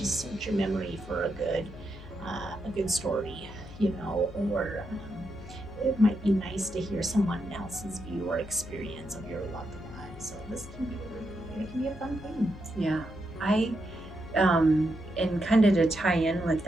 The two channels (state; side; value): noise; left; hum, 15 dB below the sound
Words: search your memory for a good story, or it might be nice to hear someone else's view or experience of your loved one. So this can be it can be a fun thing. Yeah. And kind of to tie in with